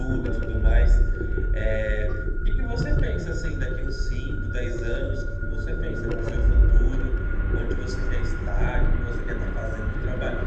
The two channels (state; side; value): identical; both; correlation 1.00